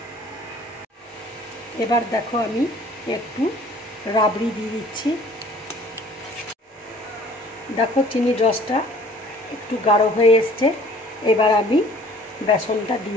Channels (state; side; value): normal; both; correlation 0.52